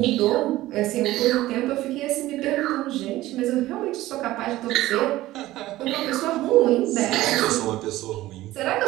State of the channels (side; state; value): left; quieter; 16.4 dB